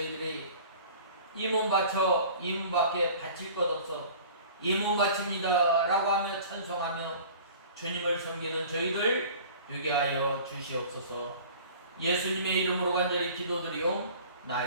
이 몸 바쳐 이 몸밖에 바칠 것 없어 이 몸 바칩니다 라고 하며 찬송하며 주님을 섬기는 저희들 되게 하여 주시옵소서. 예수님의 이름으로 간절히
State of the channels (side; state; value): both; inverted; correlation -0.44